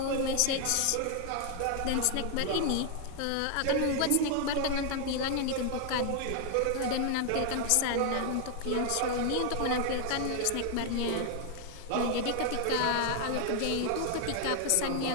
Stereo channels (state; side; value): different; both; correlation 0.00